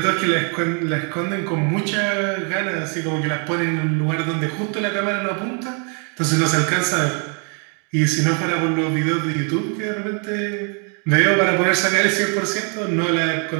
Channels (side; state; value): left; quieter; 39.2 dB